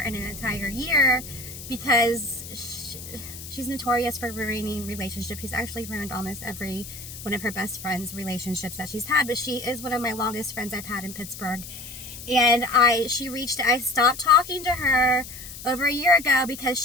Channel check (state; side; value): noise; left; hiss, 12 dB below the sound